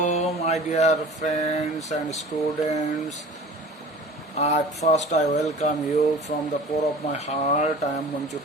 my dear friends and students. At first, I welcome you from the core of my heart. I am Manjur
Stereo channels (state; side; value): normal; both; correlation 0.42